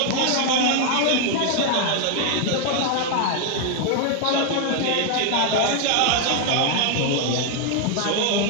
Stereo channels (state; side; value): different; both; correlation 0.00